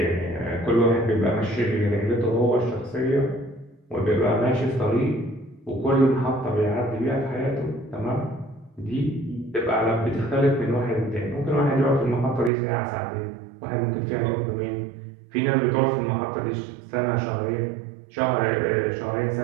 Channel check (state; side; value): drops out; left; at 12.5 s